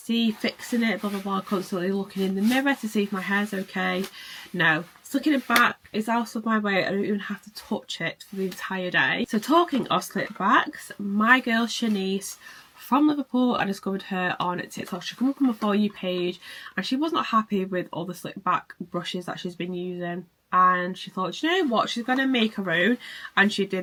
fixing it, blah blah blah, constantly looking in the mirror to see if my hair's okay. No. Slicking it back is out of my way. I don't even have to touch it for the entire day. So talking of slick backs, my girl Shanice from Liverpool, I discovered her on TikTok. She came up on my For You page and she was not happy with all the slick back brushes that she's been using, and she thought, you know what, she's gonna make her own, and she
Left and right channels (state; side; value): identical; both; correlation 1.00